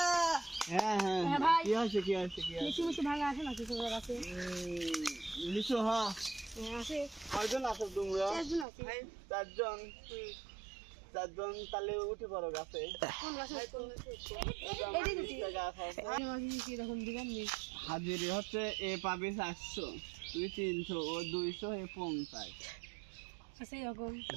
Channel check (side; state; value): left; drops out; at 8.7 s